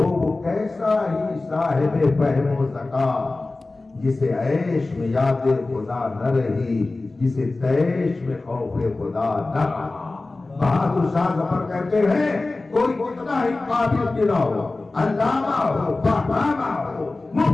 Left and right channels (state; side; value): quieter; right; 3.2 dB